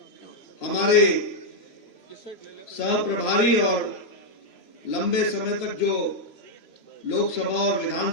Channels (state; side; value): late; right; 3.0 ms